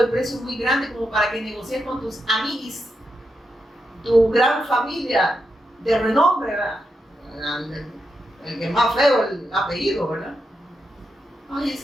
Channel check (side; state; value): both; normal; correlation 0.85